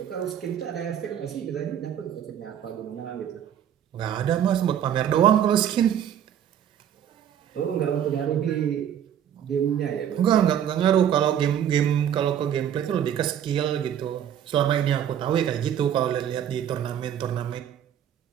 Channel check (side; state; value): left; quieter; 9.7 dB